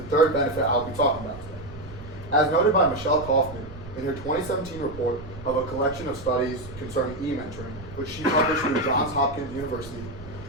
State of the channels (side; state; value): right; noise; rumble, 15 dB below the sound